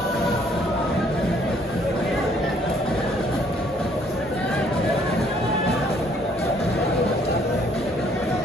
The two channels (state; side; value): normal; both; correlation 0.63